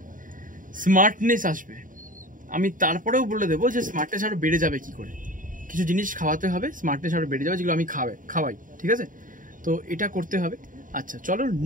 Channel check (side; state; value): left; late; 0.39 ms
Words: স্মার্টনেস আসবে। আমি তারপরেও বলে দেবো যে স্মার্টনেস আরো বেড়ে যাবে কি করে, কিছু জিনিস খাওয়াতে হবে, স্মার্টনেস আরো বেড়ে যাবে, যেগুলো আমি খাওয়াই, ঠিক আছে? তো এটা করতে হবে। আচ্ছা চলো